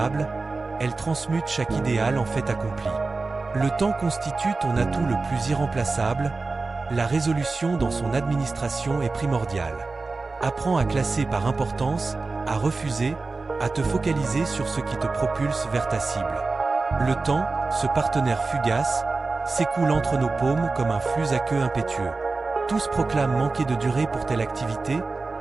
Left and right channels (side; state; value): left; quieter; 3.8 dB